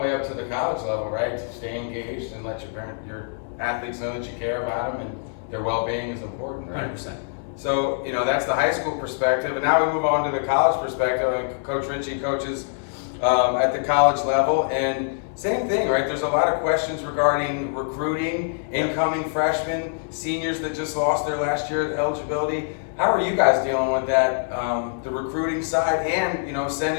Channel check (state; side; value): silent; right; 60 dB below the other